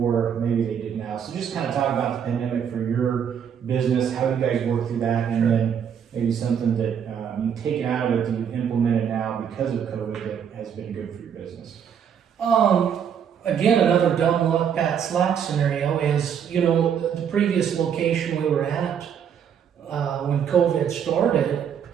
maybe they did now. So just kind of talk about the pandemic for your business, how you guys work through that, and then maybe something that you've taken out of it that you've implemented now because of COVID that has been good for your business. Again, another dumb luck, Pat Slack scenario is, the previous location we were at when COVID started,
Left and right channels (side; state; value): left; quieter; 8.1 dB